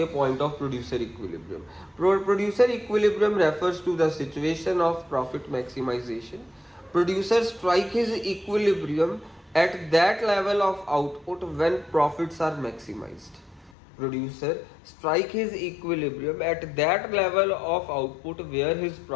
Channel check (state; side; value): drops out; right; at 13.8 s